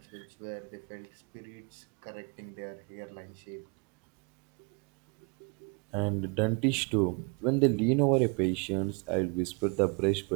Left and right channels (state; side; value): quieter; left; 33.1 dB